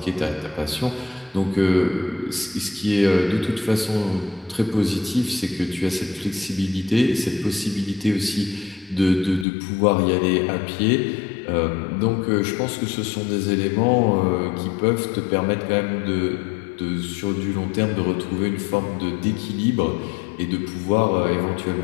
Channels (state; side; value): drops out; right; at 9.5 s